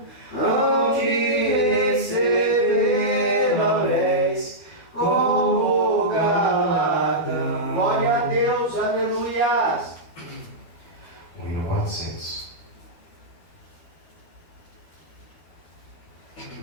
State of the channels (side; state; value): right; late; 12 ms